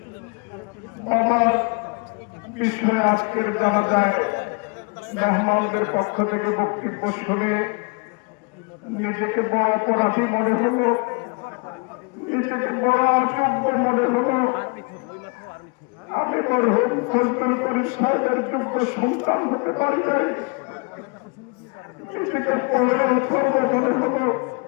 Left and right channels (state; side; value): quieter; right; 31.2 dB